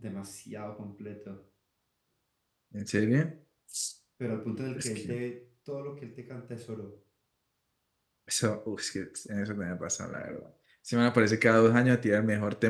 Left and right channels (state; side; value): identical; both; correlation 1.00